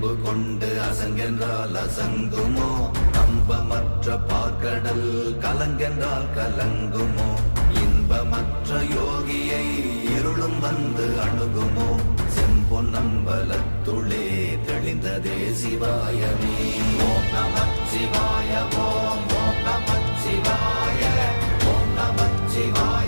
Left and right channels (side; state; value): both; inverted; correlation -1.00